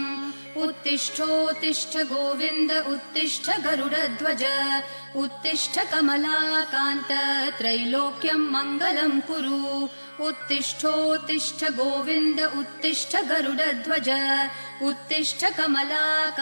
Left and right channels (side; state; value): both; inverted; correlation -1.00